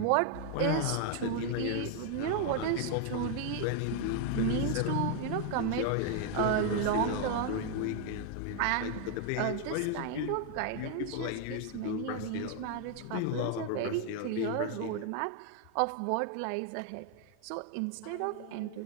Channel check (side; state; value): both; different; correlation 0.00